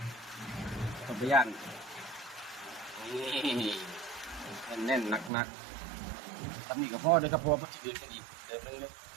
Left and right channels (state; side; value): drops out; left; at 5.3 s